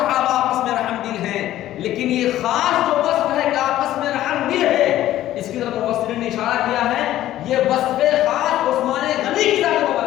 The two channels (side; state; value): right; quieter; 13.7 dB